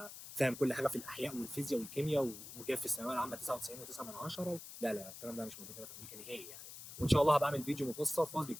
فاهم كل حاجه في الاحياء والفيزياء والكيمياء وجايب في الثانويه العامه 99.9. لا لا، الكلام ده مش موجود هنا في امريكا نهائي يعني. وان شاء الله هبقى اعمل فيديو مفصل خالص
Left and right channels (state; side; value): noise; left; hiss, 12 dB below the sound